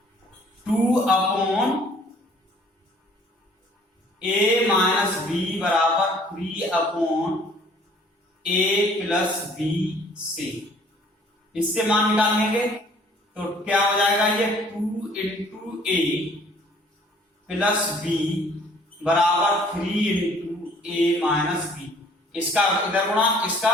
2/a माइनस b बराबर 3/a प्लस b से, इससे मान निकाल लेंगे तो क्या हो जाएगा, ये 2 इंटू a प्लस b बराबर 3 इंटू a माइनस b। इसका इधर गुणा, इसका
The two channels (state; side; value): normal; both; correlation 0.57